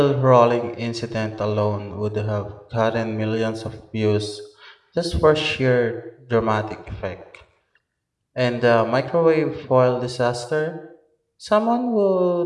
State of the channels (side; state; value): both; identical; correlation 1.00